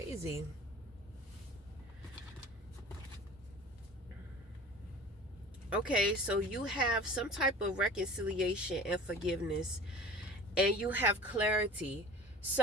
Okay, so you have some type of reconciliation and forgiveness, and you have clarity.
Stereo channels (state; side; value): normal; both; correlation 0.41